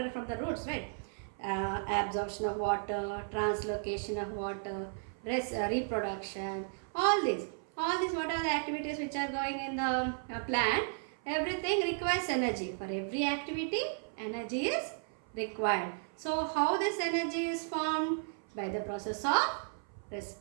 from the roots, right? Absorption of water, translocation of water, reproduction, all these whatever the activities which are going in the plant, everything requires energy. For every activity, energy is required. So how this energy is formed? By the process of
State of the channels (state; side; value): silent; left; 55 dB below the other